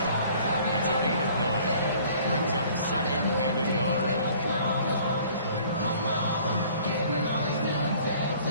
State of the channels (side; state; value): both; inverted; correlation -0.54